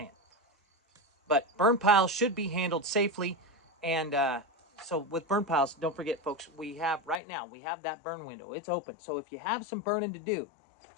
But burn piles should be handled safely, and so with burn piles, don't forget, folks, we have that burn window. It's open. So if you have some burning to do,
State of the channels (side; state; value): right; drops out; at 7.2 s